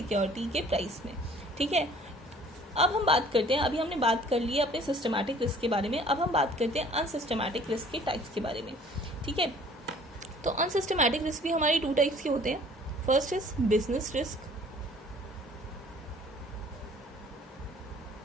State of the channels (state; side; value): normal; both; correlation 0.53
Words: के प्राइस में, ठीक है। अब हम बात करते हैं, अभी हमने बात कर ली है अपने सिस्टमैटिक रिस्क के बारे में, अब हम बात करते हैं अनसिस्टमैटिक रिस्क के टाइप्स के बारे में, ठीक है। तो अनसिस्टमैटिक रिस्क भी हमारी 2 टाइप्स के होते हैं। First is business risk